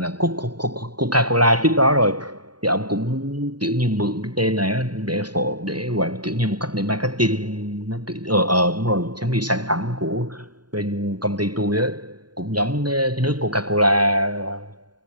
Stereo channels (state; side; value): late; left; 0.70 ms